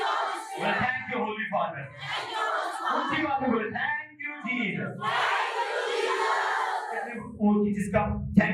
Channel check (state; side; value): identical; both; correlation 1.00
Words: thank you Holi father. उसी बात में बोले थैंक यू जीसस। जिसका